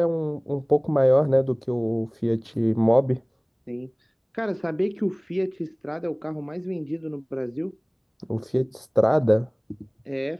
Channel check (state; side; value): identical; both; correlation 1.00